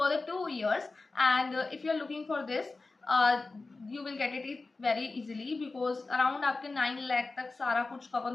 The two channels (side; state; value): right; quieter; 3.6 dB